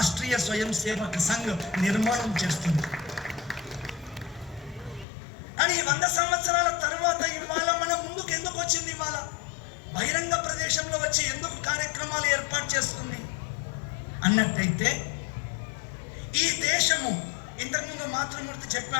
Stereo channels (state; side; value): drops out; right; at 5.1 s